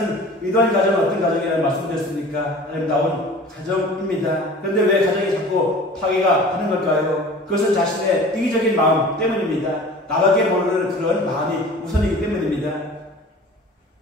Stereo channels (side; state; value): both; normal; correlation 0.43